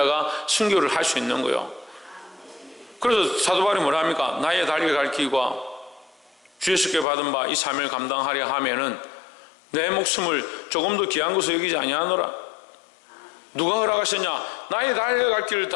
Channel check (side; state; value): right; drops out; at 7.1 s